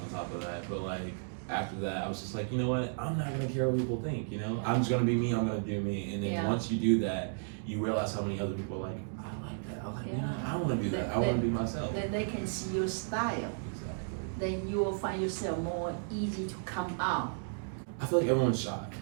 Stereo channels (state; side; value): silent; left; digital silence